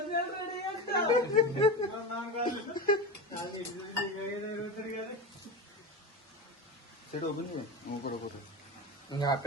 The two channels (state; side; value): normal; both; correlation 0.24